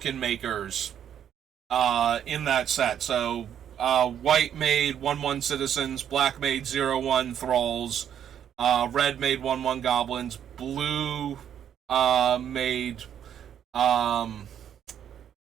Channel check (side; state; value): left; quieter; 9.4 dB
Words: makers in that set. So white made 1/1 citizens, black made 0/1 thralls, red made 1/1 goblins, blue made